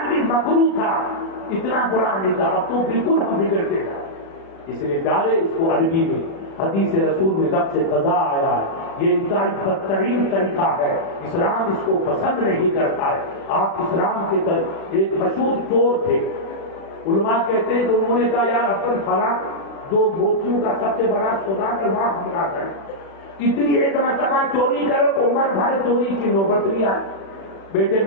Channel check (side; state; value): right; late; 36 ms